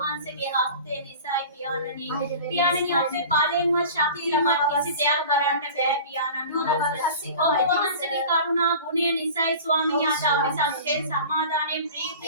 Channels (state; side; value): inverted; both; correlation -0.39